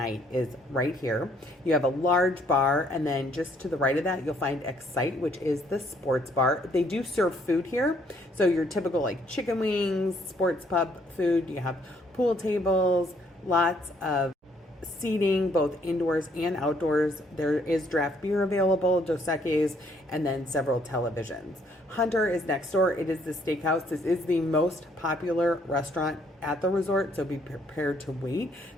is right here. You have a large bar, and then just to the right of that, you'll find Excite, which is the sports bar. They do serve food here. So your typical like chicken wings, sports pub food. You have pool tables, lots of seating, both indoors and outdoors. There is draft beer available, Dos Equis, and then several televisions. Hunter is next door. It is the steakhouse. This is the most popular restaurant at the resort, so be prepared to wait.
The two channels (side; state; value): both; normal; correlation 0.66